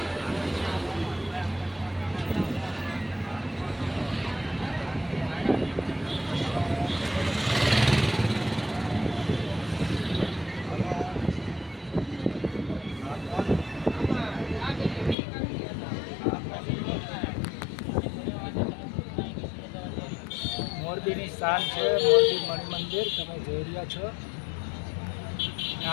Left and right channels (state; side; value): drops out; right; at 15.2 s